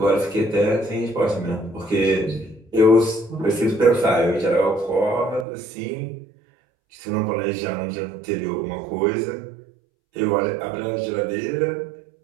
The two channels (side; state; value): left; drops out; at 5.5 s